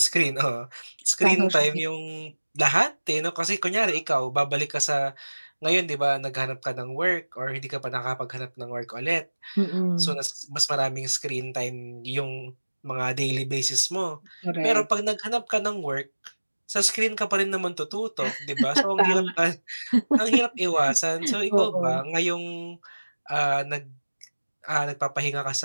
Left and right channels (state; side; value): inverted; both; correlation -1.00